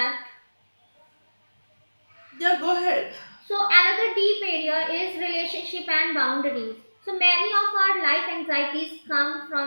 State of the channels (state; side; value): inverted; both; correlation -1.00